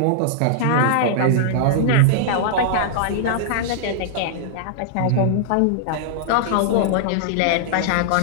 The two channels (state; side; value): different; both; correlation -0.01